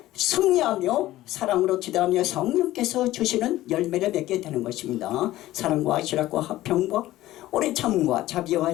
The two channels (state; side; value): quieter; right; 15.6 dB